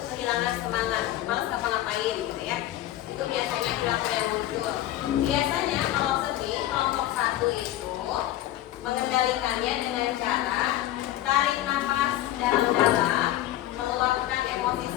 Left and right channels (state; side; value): quieter; right; 14.1 dB